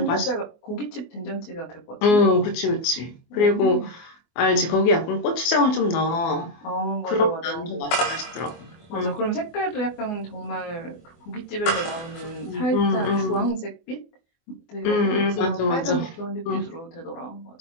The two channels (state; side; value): late; right; 24 ms